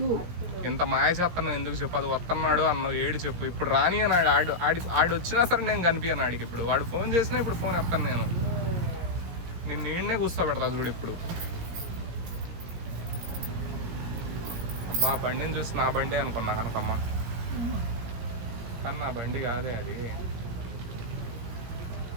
ఇంత మాయ చేస్తాను ఎందుకు చెప్పు? అది వస్తున్నాడు అన్నావు, ఏడు చెప్పు. ఇప్పుడు రాని అన్నాడు. ఆడు వచ్చినా సరే నేను కనిపించాను ఆడికి. ఇప్పుడు వాడు ఫోన్ చేసినా ఇప్పుడు ఫోన్ ఎత్తాను నేను. నిన్ను నీడనే కూర్చోబెడతా చూడు ఇప్పుడు. అబ్బా బండిని చూసి నా బండి అనుకున్నా కనకమ్మ, కానీ నా బండి కాదే అది.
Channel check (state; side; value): late; left; 17 ms